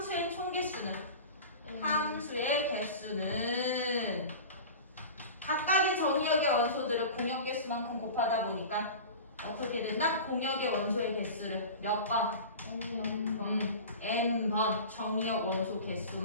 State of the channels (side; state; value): both; inverted; correlation -0.34